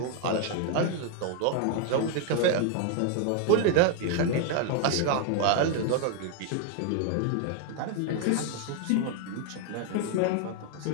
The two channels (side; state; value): both; different; correlation 0.01